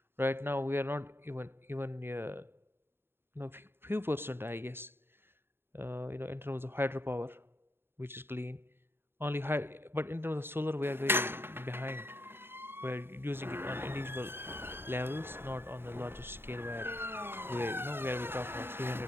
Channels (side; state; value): left; late; 0.11 ms